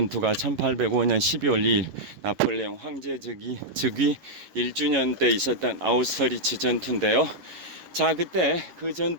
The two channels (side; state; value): left; late; 11 ms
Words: 1805년 12월 2일 나폴레옹 황제 즉위 1주년 때 있었던 아우스터리츠 전투인데요. 자, 그때 그